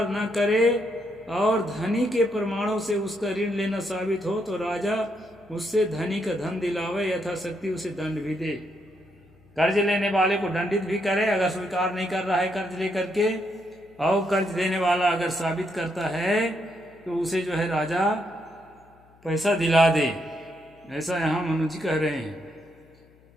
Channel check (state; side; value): noise; left; hum, 29 dB below the sound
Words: न करे और धनी के प्रमाणों से उसका ऋण लेना साबित हो तो राजा उससे धनी का धन दिलावे, यथाशक्ति उसे दंड भी दे। कर्ज लेने वाले को दंडित भी करे अगर स्वीकार नहीं कर रहा है कर्ज लेकर के, और कर्ज देने वाला अगर साबित करता है तो उसे जो है राजा पैसा दिला दे। ऐसा यहाँ मनु जी कह रहे हैं।